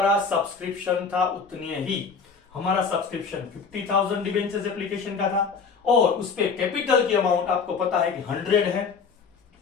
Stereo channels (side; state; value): right; quieter; 5.4 dB